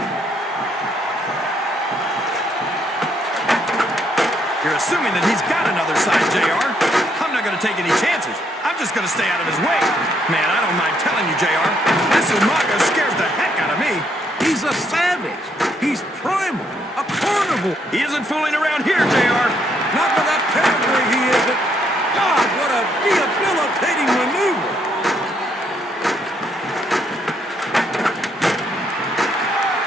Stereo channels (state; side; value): normal; both; correlation 0.72